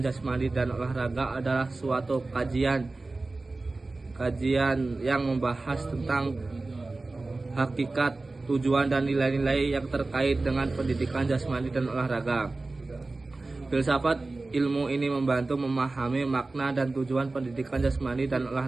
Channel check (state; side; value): quieter; left; 3.3 dB